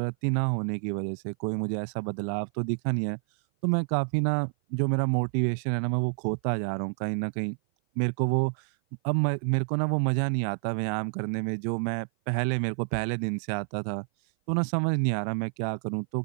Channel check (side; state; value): left; silent; 56 dB below the other